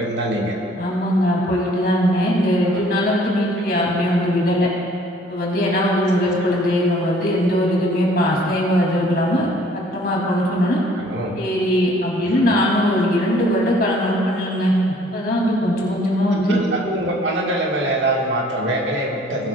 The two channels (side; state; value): both; normal; correlation 0.57